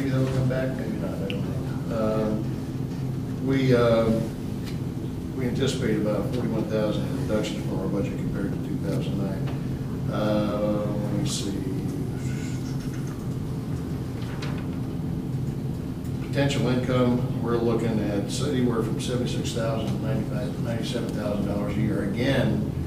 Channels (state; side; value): identical; both; correlation 1.00